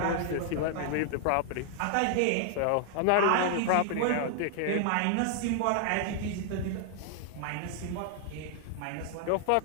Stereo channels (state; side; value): different; both; correlation 0.00